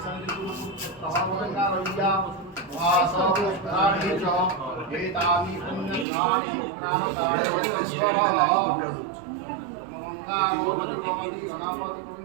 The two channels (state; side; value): drops out; left; at 6.1 s